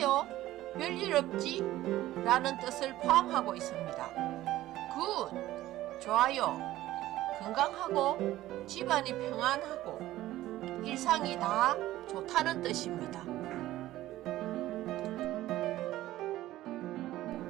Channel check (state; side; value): quieter; left; 15.3 dB